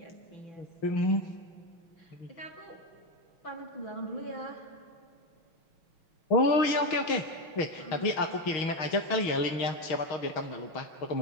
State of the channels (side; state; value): right; late; 6.3 ms